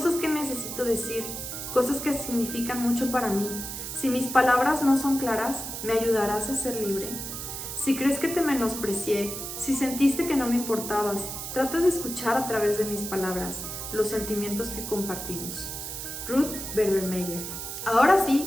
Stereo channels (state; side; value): noise; right; hiss, 7 dB below the sound